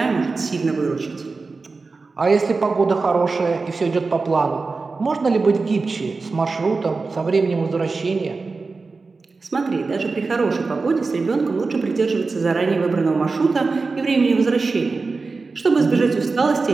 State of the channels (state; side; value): quieter; left; 4.1 dB